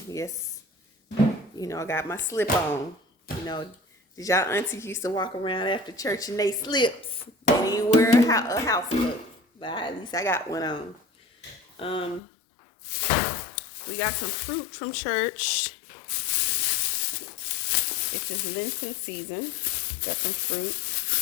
Yes, I got my slip on. You know, did y'all aunties used to walk around after church and they slips? They didn't wear a house look, but at least I got one on. Um, we got some fruit from church. This is Lenten season. Got some fruit.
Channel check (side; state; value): right; drops out; at 12.2 s